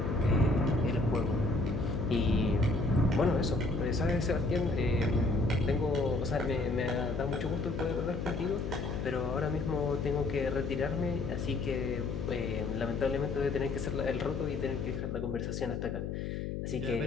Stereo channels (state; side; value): noise; left; hum, 4 dB below the sound